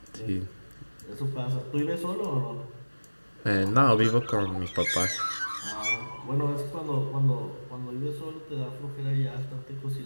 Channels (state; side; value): inverted; both; correlation -1.00